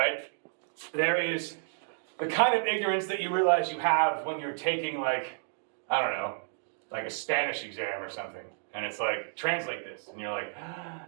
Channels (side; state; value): left; silent; digital silence